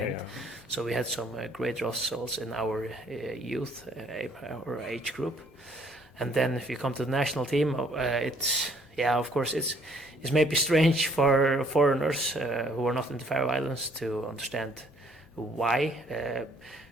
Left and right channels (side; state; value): both; normal; correlation 0.62